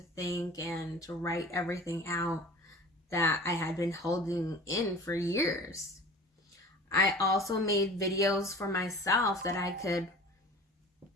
think and to write everything out that I had been holding in for years. I also made videos for myself that I could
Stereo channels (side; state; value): both; normal; correlation 0.41